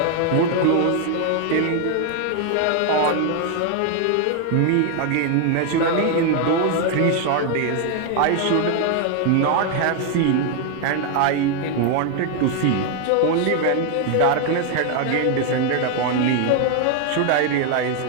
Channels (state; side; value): different; both; correlation 0.01